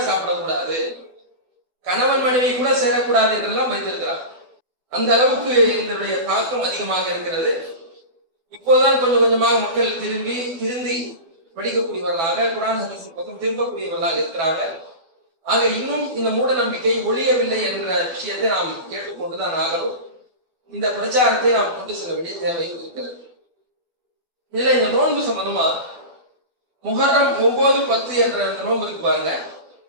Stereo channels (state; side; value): late; left; 12 ms